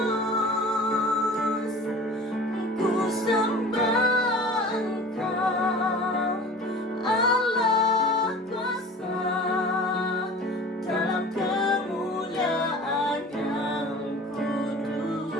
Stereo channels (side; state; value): both; normal; correlation 0.41